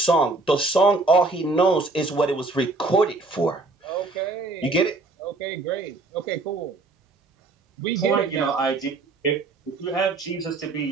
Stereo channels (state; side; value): quieter; left; 3.4 dB